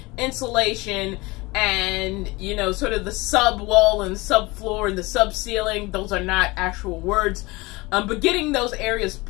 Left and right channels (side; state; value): right; quieter; 23.1 dB